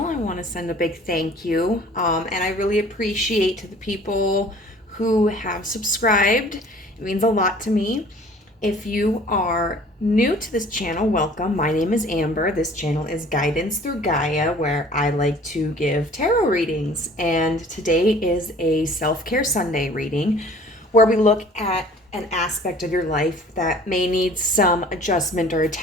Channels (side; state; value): both; normal; correlation 0.50